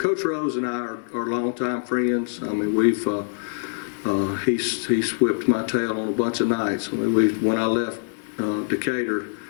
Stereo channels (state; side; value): silent; right; 63 dB below the other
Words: Rose and I are longtime friends. We've he's whipped my tail on a bunch of nights. When I left Decatur,